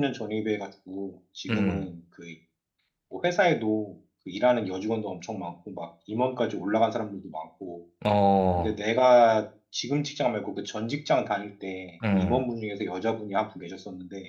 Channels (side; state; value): both; identical; correlation 1.00